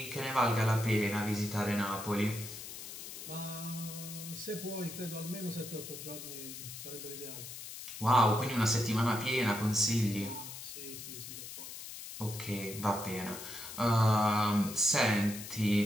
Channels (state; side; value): noise; left; hiss, 10 dB below the sound